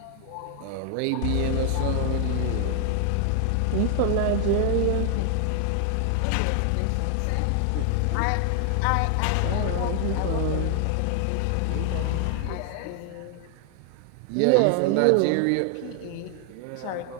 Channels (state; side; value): different; both; correlation 0.00